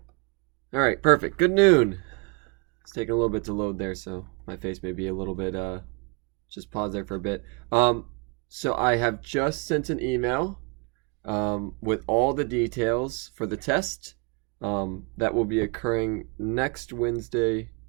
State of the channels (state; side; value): quieter; left; 32.3 dB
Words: All right, perfect. Good noon. It's taking a little bit to load there, so my face may be a little bit just pause there for a bit. Um so I have just sent an email with all the details for the test that will be occurring next Wednesday,